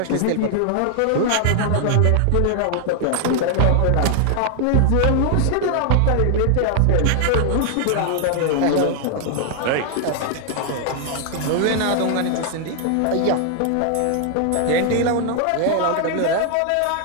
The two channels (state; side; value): different; both; correlation 0.00